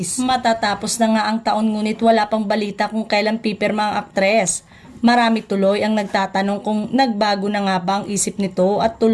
Matatapos na nga ang taon ngunit wala pang balita kung kailan pipirma ang aktres. Marami tuloy ang nagtatanong kung nagbago na nga ba ang isip nito at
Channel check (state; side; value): identical; both; correlation 1.00